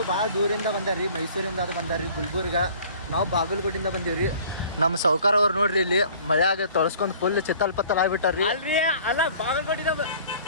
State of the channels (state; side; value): inverted; both; correlation -0.50